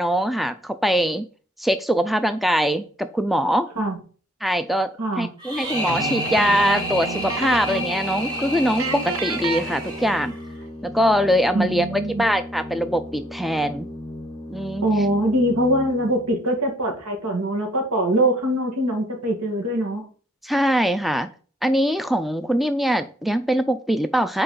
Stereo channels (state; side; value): normal; both; correlation 0.67